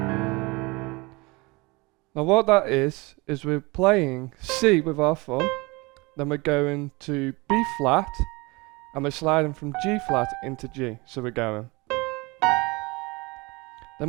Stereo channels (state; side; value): quieter; left; 24.9 dB